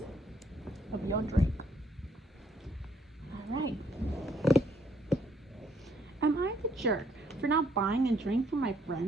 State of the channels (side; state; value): both; normal; correlation 0.68